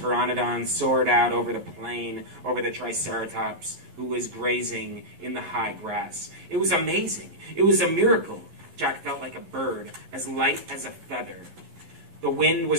soared out over the plain, over the Triceratops, who was grazing in the high grass. It was amazing. It was a miracle. Jack felt like a bird, as light as a feather. The wind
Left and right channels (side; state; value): left; late; 12 ms